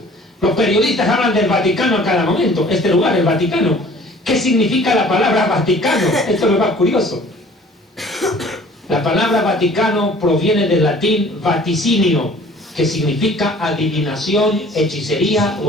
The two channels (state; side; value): normal; both; correlation 0.51